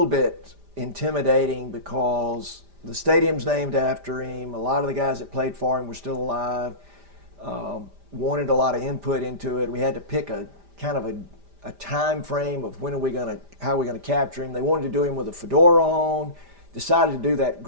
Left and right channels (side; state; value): left; late; 5.0 ms